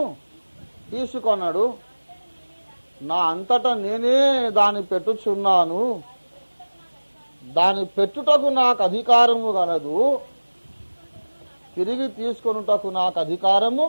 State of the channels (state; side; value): inverted; both; correlation -1.00